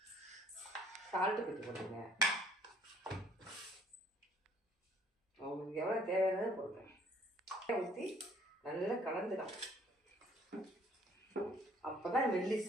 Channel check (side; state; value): both; normal; correlation 0.60